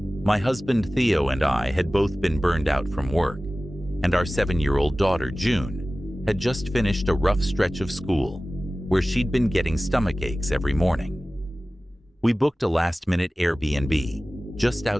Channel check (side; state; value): both; normal; correlation 0.97